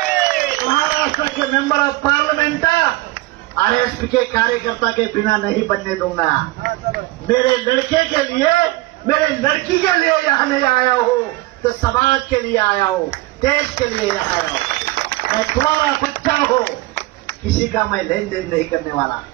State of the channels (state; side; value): quieter; left; 19.6 dB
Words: महाराष्ट्र के मेंबर ऑफ पार्लियामेंट RSP के कार्यकर्ता के बिना नहीं बनने दूंगा। मेरे लड़के के लिए, मेरे लड़की के लिए यहाँ नहीं आया हूँ, तो समाज के लिए आया हूँ, देश के लिए यहाँ आया हूँ। मैं तुम्हारा बच्चा हूँ, किसी का मैं लेन देन नहीं करने वाला।